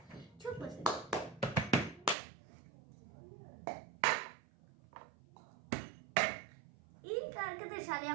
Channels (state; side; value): drops out; left; at 2.1 s